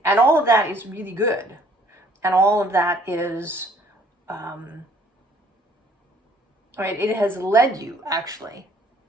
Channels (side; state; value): both; normal; correlation 0.60